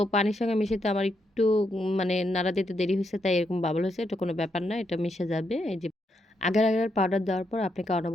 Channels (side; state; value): both; normal; correlation 0.80